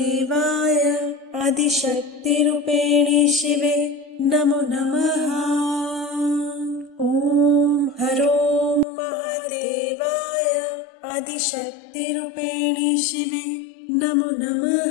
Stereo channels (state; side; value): drops out; right; at 8.8 s